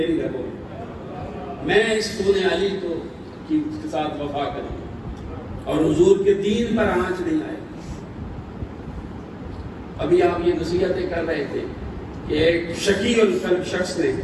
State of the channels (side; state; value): both; identical; correlation 1.00